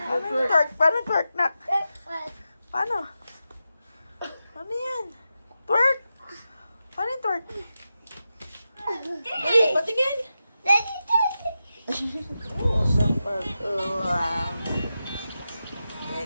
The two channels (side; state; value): both; inverted; correlation -0.90